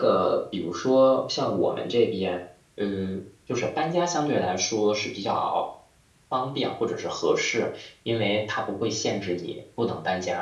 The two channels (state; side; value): identical; both; correlation 1.00